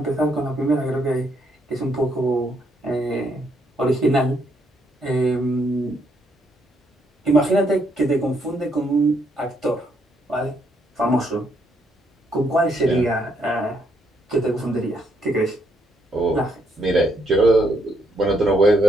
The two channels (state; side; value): normal; both; correlation 0.74